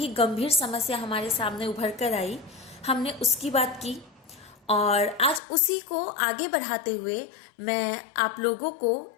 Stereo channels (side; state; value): right; drops out; at 5.4 s